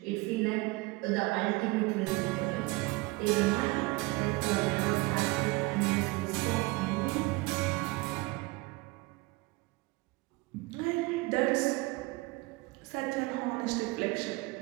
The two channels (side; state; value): left; quieter; 23.6 dB